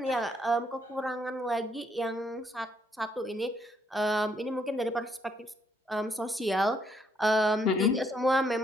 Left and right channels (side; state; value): both; normal; correlation 0.71